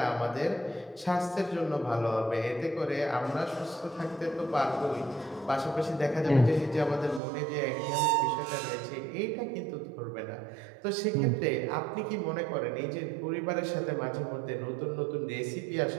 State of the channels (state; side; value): drops out; left; at 7.2 s